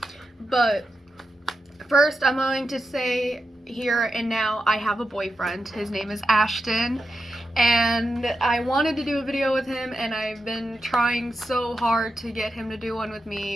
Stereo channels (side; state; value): both; normal; correlation 0.88